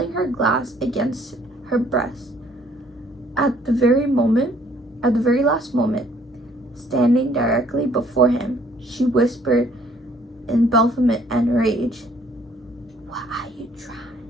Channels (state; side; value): normal; both; correlation 0.61